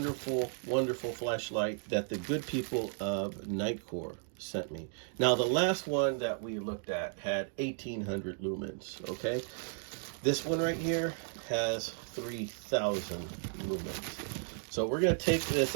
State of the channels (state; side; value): silent; left; 55 dB below the other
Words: flashlight that the good people of Nitecore sent me. Now the last one that we looked at had 1800 lumens, okay? This one right here has 3000 lumens. So we're going to take this